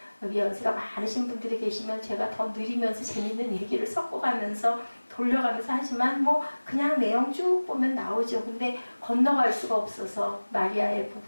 여기 연세가 많으신 분들이 계시면 제가 더 느리면서 재밌는 얘기를 섞어가면서 돌려가면서 하지만 뭐 그냥 내용 쭉 보면 나오죠. 근데 건너갈 수가 없어서 마리아의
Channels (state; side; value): inverted; both; correlation -1.00